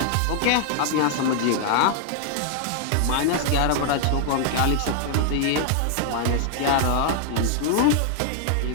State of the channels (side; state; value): both; different; correlation 0.00